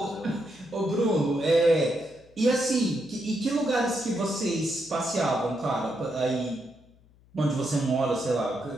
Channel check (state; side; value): noise; left; hum, 29 dB below the sound